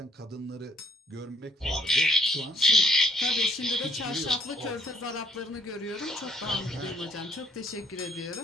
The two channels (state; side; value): normal; both; correlation 0.65